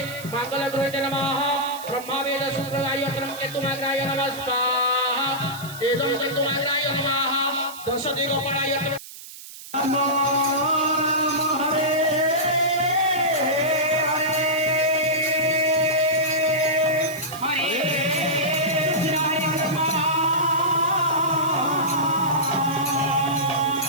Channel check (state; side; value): noise; right; hiss, 15 dB below the sound